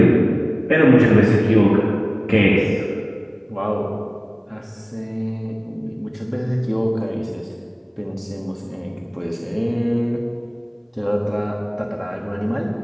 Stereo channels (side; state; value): both; identical; correlation 1.00